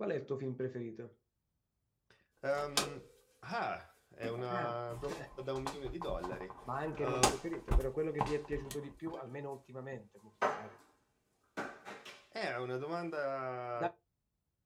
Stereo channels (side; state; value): both; identical; correlation 1.00